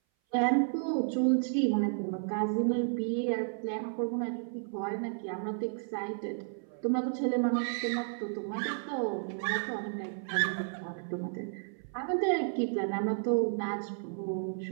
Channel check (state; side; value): silent; left; 56 dB below the other